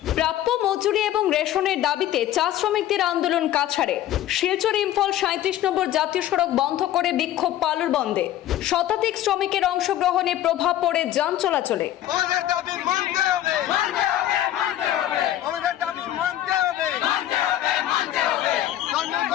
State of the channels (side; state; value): right; quieter; 12.8 dB